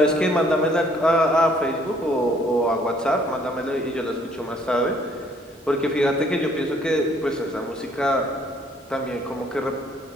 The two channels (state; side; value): normal; both; correlation 0.62